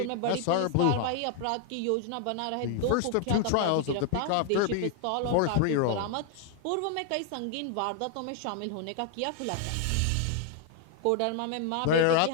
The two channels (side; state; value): both; different; correlation 0.00